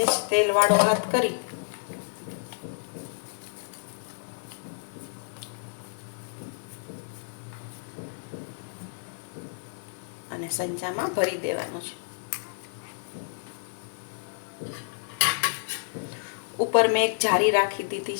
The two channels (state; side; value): silent; right; digital silence